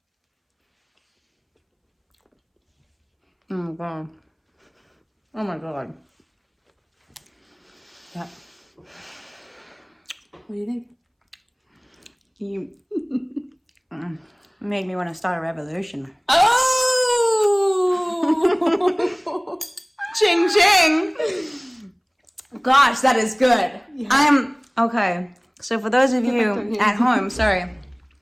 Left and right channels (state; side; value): identical; both; correlation 1.00